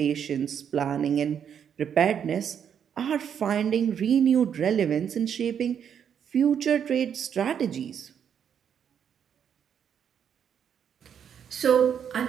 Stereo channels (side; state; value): left; quieter; 8.2 dB